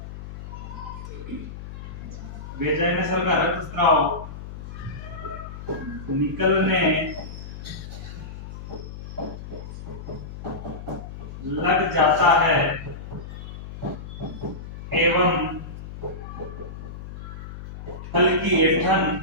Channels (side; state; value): left; noise; hum, 11 dB below the sound